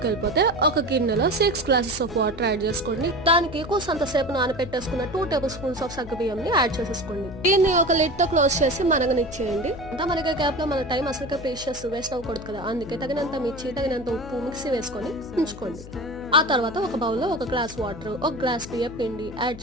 వెళ్ళిపోతే ఒక గిన్నెలో 6 గ్లాసెస్ ఆఫ్ వాటర్ యాడ్ చేసుకోండి. దానికి కూసంతసేపు నానబెట్టేసుకున్న 2 టేబుల్ స్పూన్స్ ఆఫ్ సగ్గుబియ్యం ని యాడ్ చేసేసుకోండి. దీన్ని ఒక లిడ్ తో క్లోజ్ చేసి మరగనిచ్చేయండి. అంతా మనకి గ్యాప్ లో మన టైం అసలు ప్రీషియస్ వేస్ట్ అవ్వకూడదు కదా, అందుకే తగినంత మిర్చి, తగినంత ఉప్పు మిక్సీ వేసుకొని ఉంచుకోండి. ఆ తర్వాత ఒక బౌల్లో 1 గ్లాస్ వాటర్, 1 గ్లాస్ బియ్యం పిండి యాడ్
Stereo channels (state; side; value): noise; left; hum, 15 dB below the sound